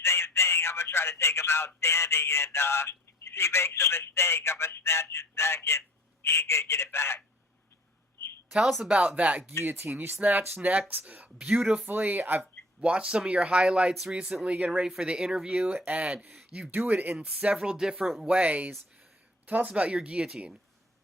same thing. I'm going to try to take him out standing, and if he makes a mistake, I'm going to snatch his neck, and he ain't going to get it back. Tell us about that guillotine. You snatch necks beautifully. I've watched some of your highlights recently getting ready for the interview, and you do it in several different ways. Tell us about your guillotine.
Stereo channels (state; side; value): normal; both; correlation 0.50